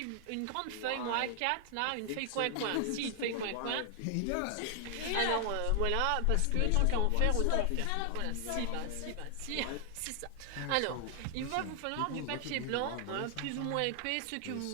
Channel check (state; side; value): different; both; correlation 0.00